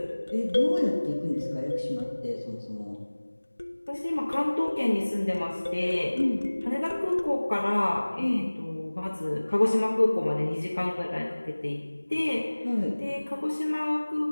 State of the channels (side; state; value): both; inverted; correlation -1.00